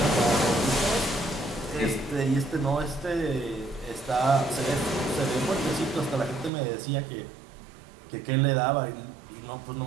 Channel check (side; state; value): left; drops out; at 6.5 s